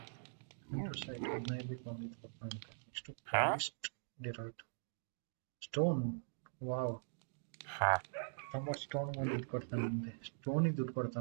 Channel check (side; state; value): left; silent; digital silence